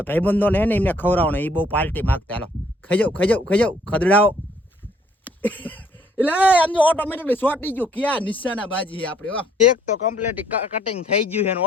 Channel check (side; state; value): both; normal; correlation 0.64